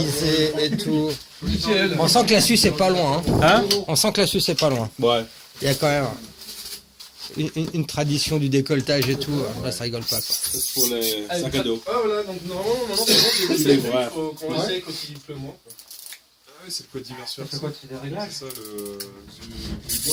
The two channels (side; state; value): both; identical; correlation 1.00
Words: et tout. On sent que la Suisse est pas loin. Hein? On sent que la Suisse est pas loin. Ouais. Il y a quand même une tradition du décolletage et tout. Là, ça rigole pas, quoi. C'est pour les sacs à dos. Ah voilà, donc normalement, maintenant c'est bon, j'ai C'est laissé, vrai. il faut qu'on essaye quand il pleut moins. Ah oui, c'est le code diversion. C'est quoi, c'est des réglages? C'est